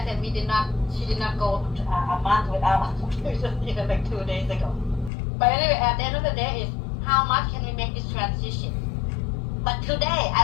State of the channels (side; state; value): right; drops out; at 5.1 s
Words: said she did not go a month without even like 2 days ago. But anyway, at the end of the day is how much can we make this transition? But today,